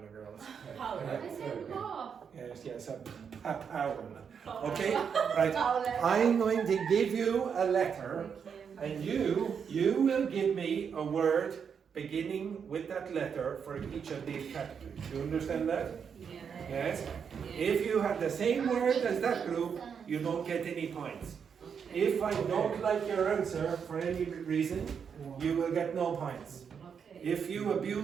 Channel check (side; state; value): left; quieter; 6.9 dB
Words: girls. Power. I said puff. Yes, a power. Okay, right. I'm going to give you a letter, and you will give me a word beginning with that letter for each of these categories. Do you understand that? Yes? If you have the same word as that group, you don't get any points. If I don't like your answer for any reason, you will get no points. If you